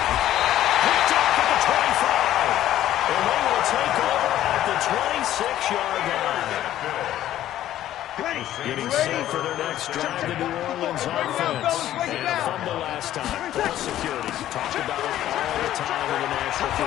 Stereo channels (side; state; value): right; quieter; 12.8 dB